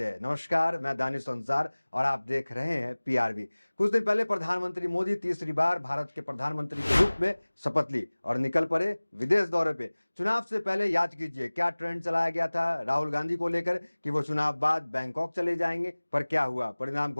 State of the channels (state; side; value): inverted; both; correlation -1.00